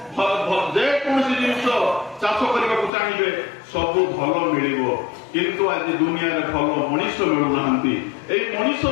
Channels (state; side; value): drops out; right; at 2.9 s